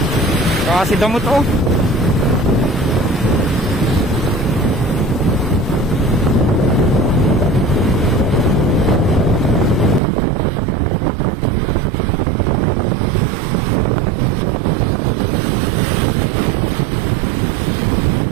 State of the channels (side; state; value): left; drops out; at 10.0 s